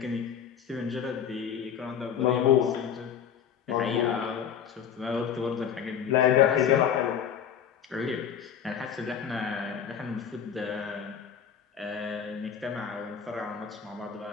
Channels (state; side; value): quieter; right; 8.2 dB